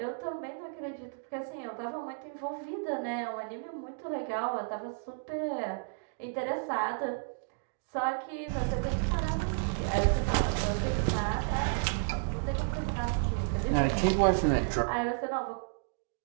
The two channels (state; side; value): silent; left; digital silence